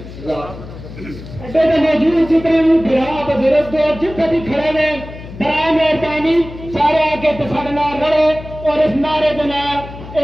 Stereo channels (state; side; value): noise; left; hum, 14 dB below the sound